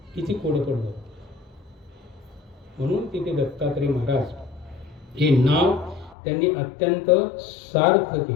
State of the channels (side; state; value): right; drops out; at 6.2 s